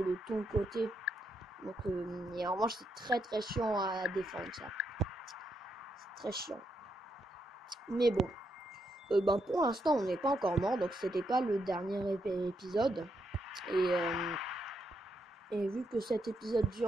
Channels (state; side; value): normal; both; correlation 0.79